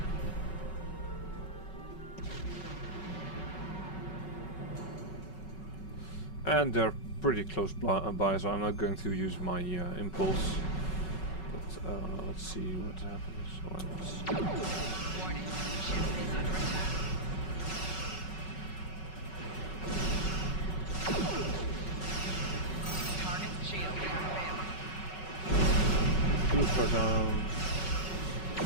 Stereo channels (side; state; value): right; late; 5.3 ms